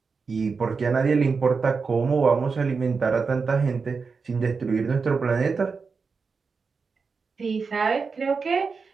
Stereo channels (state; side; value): quieter; left; 5.0 dB